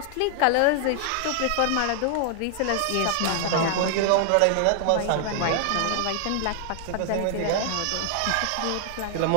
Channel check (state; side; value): different; both; correlation 0.00